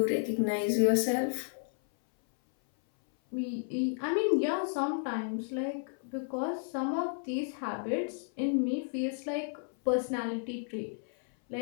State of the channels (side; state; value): right; silent; 56 dB below the other